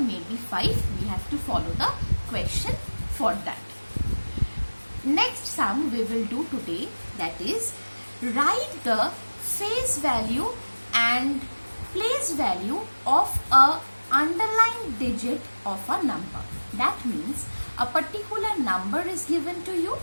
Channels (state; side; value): inverted; both; correlation -1.00